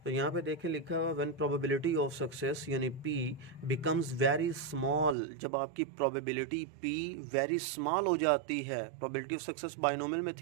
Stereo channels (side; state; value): left; drops out; at 5.2 s